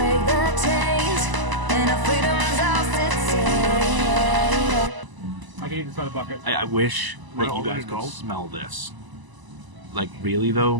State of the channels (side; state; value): left; late; 1.0 ms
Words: the chains and our freedom's ours to take. I can eat this by the bucket. I wish that you guys could smell this. Like, really